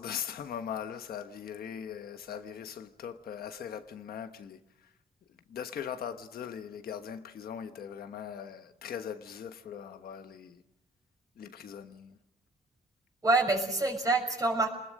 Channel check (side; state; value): both; normal; correlation 0.47